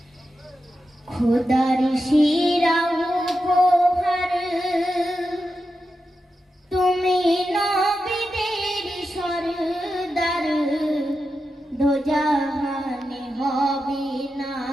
खुदार शिरा उपहार তুমি নবীদের সরদার, দোজাহানে হবে না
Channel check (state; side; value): normal; both; correlation 0.89